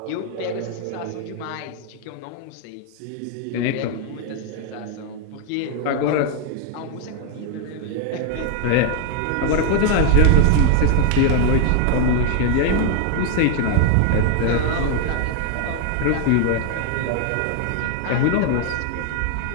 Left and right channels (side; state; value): both; different; correlation 0.01